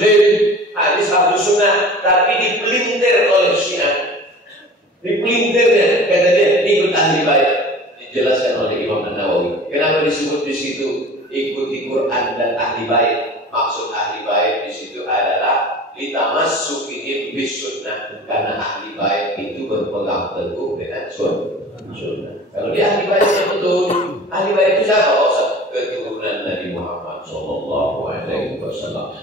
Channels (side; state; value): both; normal; correlation 0.41